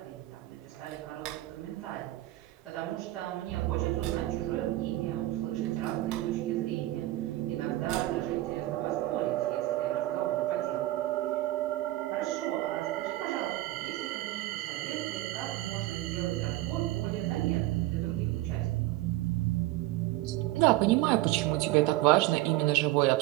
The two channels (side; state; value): left; quieter; 16.9 dB